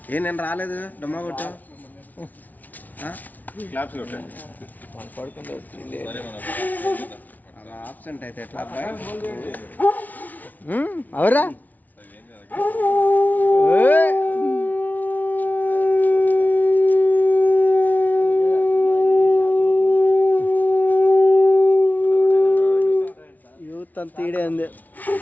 ఏ నేను రాలేదు డమ్మా కొట్టు క్లాప్స్ కొట్టండి. అలా ఆబ్సెంట్ అయితే ఎట్లా అబ్బాయి? అవరా యూత్ అంత ఈడే ఉంది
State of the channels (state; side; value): late; right; 0.077 ms